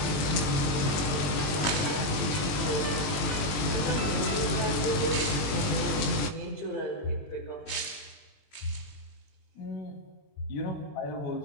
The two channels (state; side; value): late; right; 21 ms